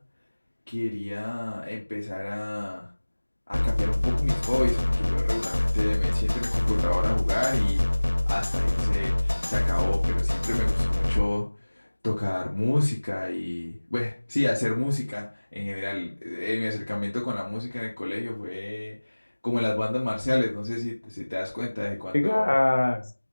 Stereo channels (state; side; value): inverted; both; correlation -1.00